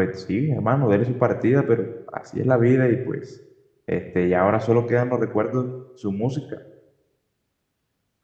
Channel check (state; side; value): identical; both; correlation 1.00